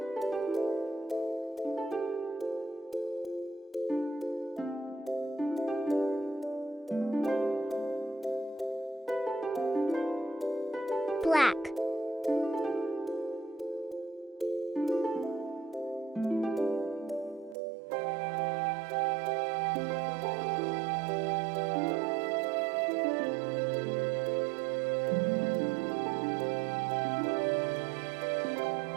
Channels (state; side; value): drops out; left; at 17.6 s